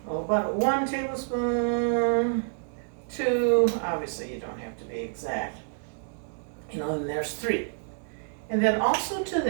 1 tablespoon, 2. Obviously, you don't have to be exact. And there's 3. And then also to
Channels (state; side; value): silent; left; digital silence